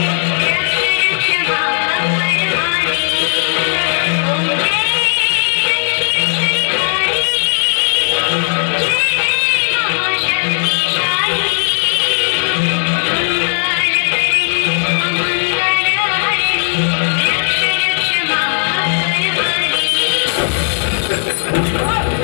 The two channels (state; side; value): silent; right; digital silence